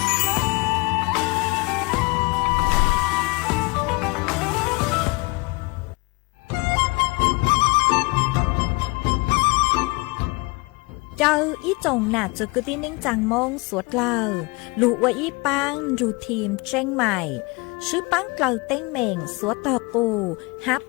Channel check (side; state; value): right; quieter; 26.5 dB